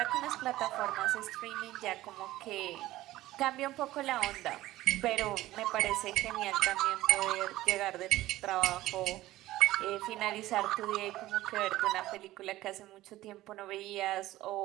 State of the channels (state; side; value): quieter; left; 16.1 dB